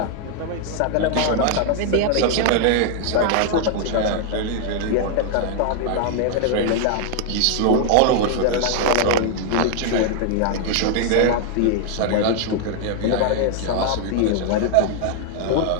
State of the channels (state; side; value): different; both; correlation 0.00